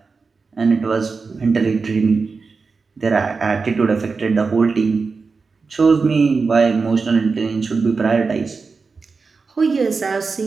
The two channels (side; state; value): left; quieter; 4.6 dB